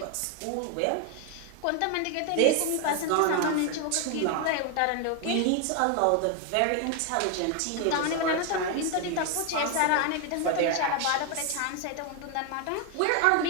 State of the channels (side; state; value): both; different; correlation 0.01